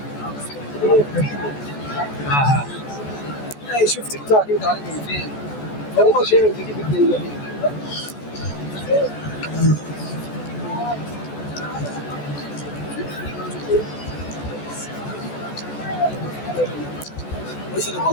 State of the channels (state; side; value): late; right; 14 ms